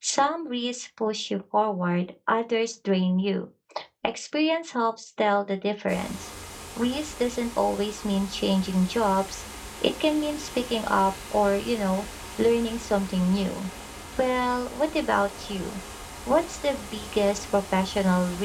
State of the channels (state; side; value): identical; both; correlation 1.00